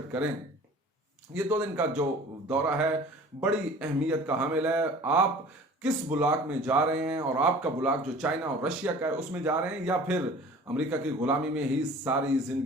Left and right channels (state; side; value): normal; both; correlation 0.45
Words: करें। ये 2 दिन का जो दौरा है बड़ी अहमियत का हामिल है। आप किस ब्लॉक में जा रहे हैं, और आपका ब्लॉक जो चाइना और रशिया का है उसमें जा रहे हैं, या फिर अमेरिका की गुलामी में ही सारी